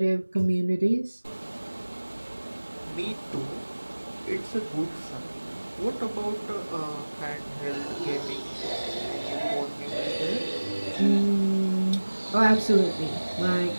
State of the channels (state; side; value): inverted; both; correlation -1.00